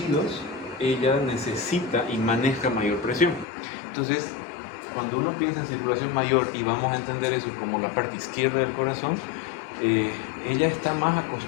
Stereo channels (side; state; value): right; drops out; at 3.5 s